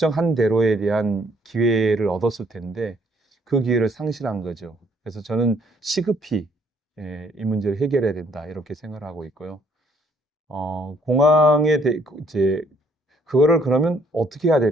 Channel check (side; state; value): both; normal; correlation 0.65